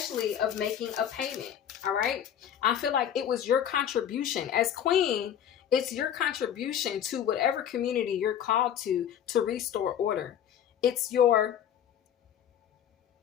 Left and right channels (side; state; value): right; quieter; 9.6 dB